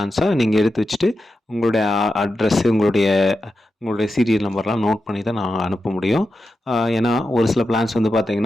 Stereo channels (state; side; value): normal; both; correlation 0.89